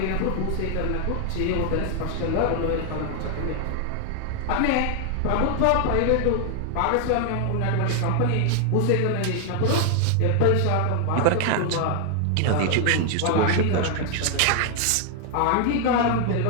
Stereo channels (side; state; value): both; different; correlation 0.00